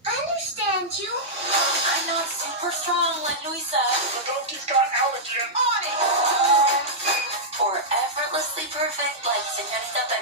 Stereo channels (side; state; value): both; normal; correlation -0.10